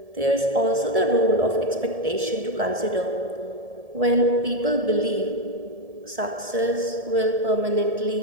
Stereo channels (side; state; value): left; late; 1.7 ms